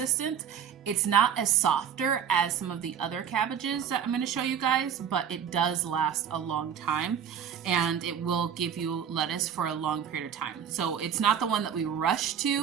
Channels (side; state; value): left; quieter; 8.3 dB